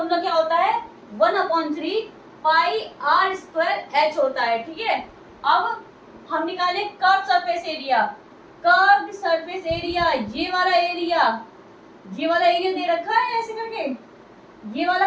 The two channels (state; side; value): identical; both; correlation 1.00